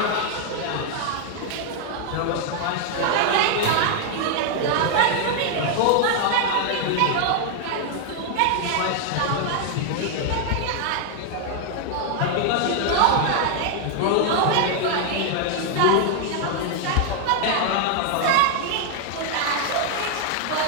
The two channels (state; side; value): different; both; correlation 0.00